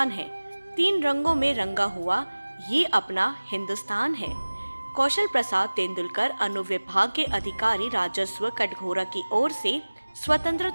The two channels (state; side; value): inverted; both; correlation -1.00